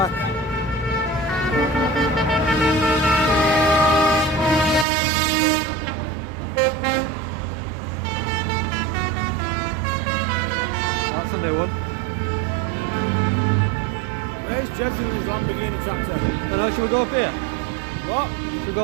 That's a new one. Where's Judging his Lamborghini tractor? Don't know, should we go up here? What? Should we go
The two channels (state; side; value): drops out; left; at 4.9 s